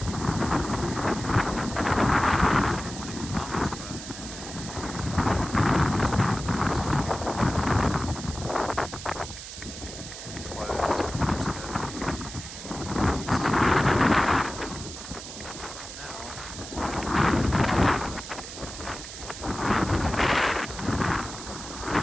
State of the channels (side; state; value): right; noise; hiss, 11 dB below the sound